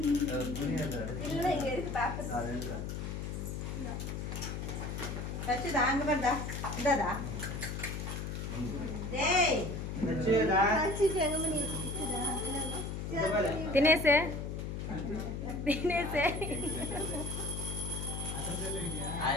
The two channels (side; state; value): left; noise; hum, 4 dB below the sound